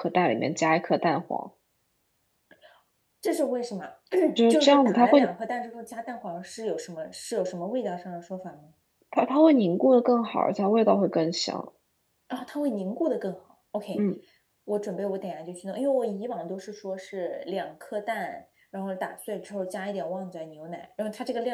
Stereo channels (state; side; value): identical; both; correlation 1.00